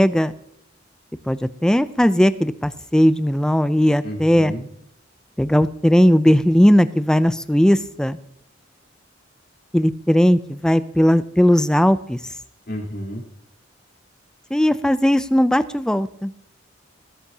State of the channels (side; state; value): both; normal; correlation 0.98